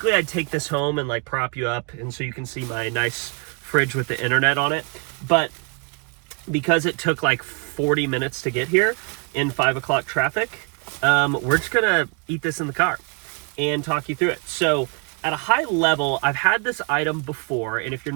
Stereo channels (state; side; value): quieter; left; 34.9 dB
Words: I'd take this home and like prop you up and so you can see my nice fridge with the internet on it. But because it took like 40 minutes to get here in 5 o'clock traffic, we're just gonna eat this in the car and talk you through it. So at a high level, I've had this item before, and if you're